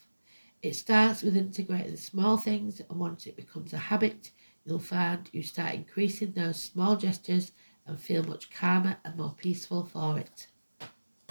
It starts with integrating the small things, and once it becomes a habit, you'll find you start increasing those small gestures and feel much calmer and more peaceful for it.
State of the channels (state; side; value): inverted; both; correlation -1.00